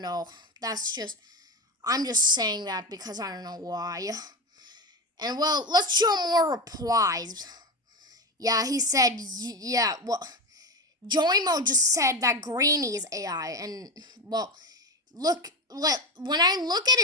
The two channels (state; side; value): normal; both; correlation 0.19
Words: know. I'm just saying that because I don't know why. And well, let's show more replies. Yeah, he said, yeah, well, Joimo just said that Greeny is AI, and well, when I look at